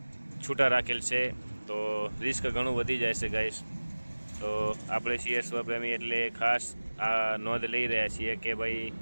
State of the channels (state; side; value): inverted; both; correlation -1.00